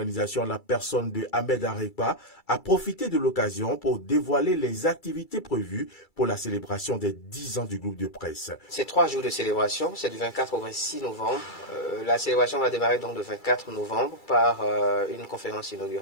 la personne de Ahmed Arepa, a profité de l'occasion pour dévoiler les activités prévues pour la célébration des 10 ans du groupe de presse. C'est 3 jours de célébration, c'est du 24 au 26 novembre. La célébration va démarrer donc le 24 novembre par une conférence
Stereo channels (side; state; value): right; late; 2.3 ms